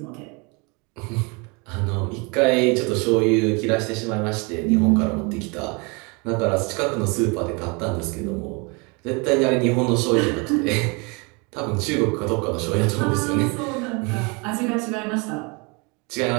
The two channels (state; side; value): quieter; left; 30.3 dB